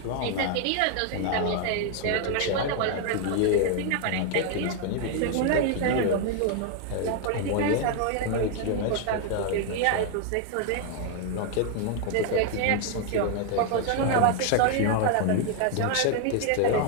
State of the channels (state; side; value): different; both; correlation 0.01